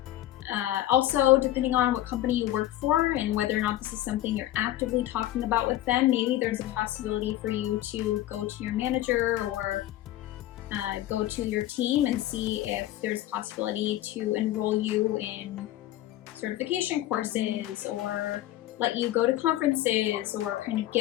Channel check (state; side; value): quieter; right; 14.3 dB